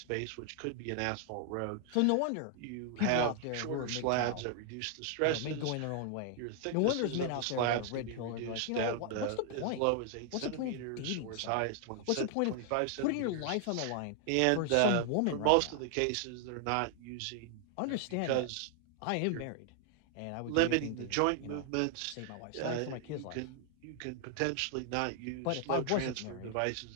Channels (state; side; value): different; both; correlation 0.00